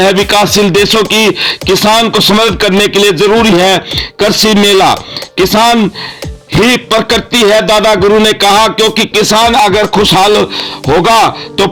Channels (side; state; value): both; identical; correlation 1.00